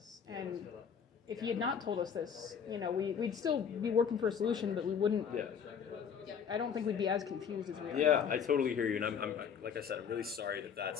And if he had not told us this, we'd still be working for a solution, but we wouldn't. Yeah. I don't think we'd be as confused as we are. Yeah, now. I totally hear you, and I'm like I said, I'm really sorry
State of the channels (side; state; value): right; quieter; 7.2 dB